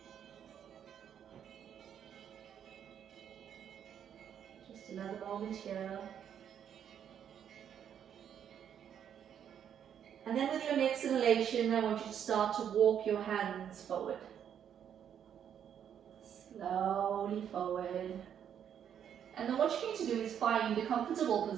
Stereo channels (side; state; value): left; quieter; 8.9 dB